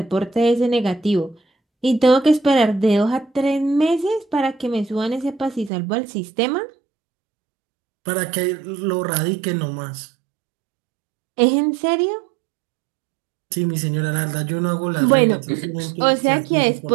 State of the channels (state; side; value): drops out; left; at 5.7 s